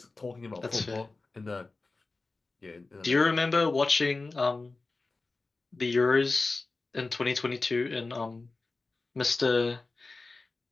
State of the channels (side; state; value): right; quieter; 3.6 dB